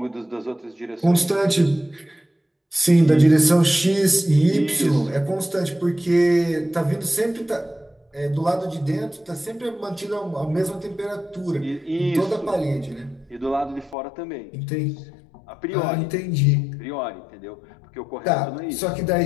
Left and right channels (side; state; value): right; drops out; at 14.0 s